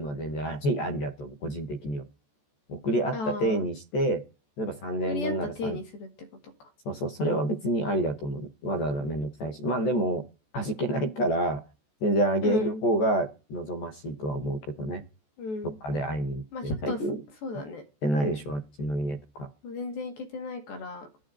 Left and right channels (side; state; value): right; late; 14 ms